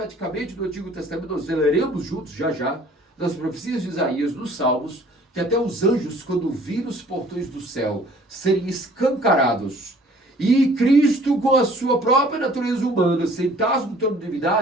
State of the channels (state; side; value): normal; both; correlation 0.54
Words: no Antigo Testamento, nós leremos juntos já, nas profecias de Isaías, nos Salmos, que até os anjos, quando viram os portões do céu serem escancarados, e Cristo, com a sua própria natureza humana, sentados no trono de